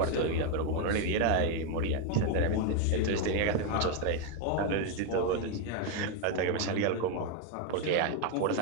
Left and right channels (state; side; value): different; both; correlation 0.02